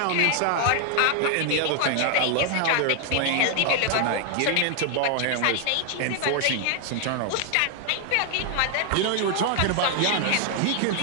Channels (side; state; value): both; different; correlation 0.00